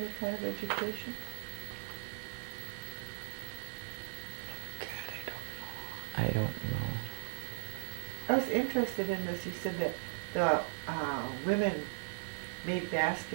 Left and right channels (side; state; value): left; silent; 53 dB below the other